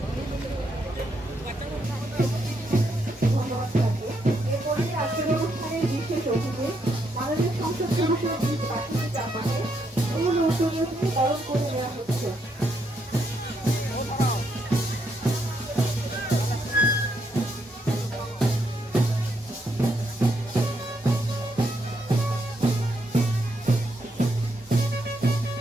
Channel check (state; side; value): normal; both; correlation 0.77